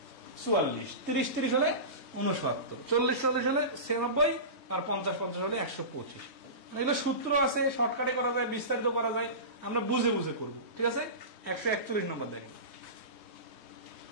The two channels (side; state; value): right; late; 3.2 ms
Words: 44, 30 30 হলে 69, 40 40 হলে 96, আর 50 50 হলে 125। এগুলো সূত্র আছে, শর্টকাটে করা যায়, বিস্তারিত করা যায়, আমরা বুঝে বুঝে করব, ঠিক আছে। 141 নম্বর দেখেন,